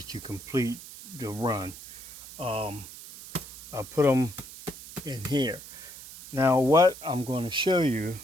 to complete the run. I put them in here. Now what I'm going to show you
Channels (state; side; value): noise; right; hiss, 15 dB below the sound